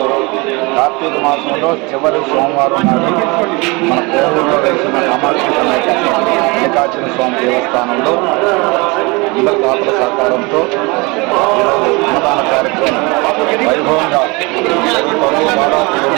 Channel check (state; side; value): quieter; left; 26.6 dB